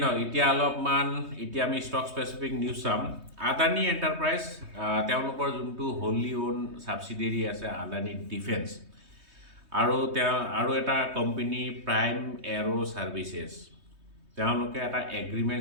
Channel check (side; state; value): left; late; 3.2 ms